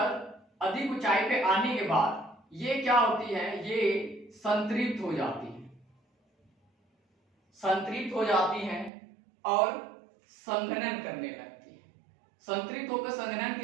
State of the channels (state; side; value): drops out; left; at 8.9 s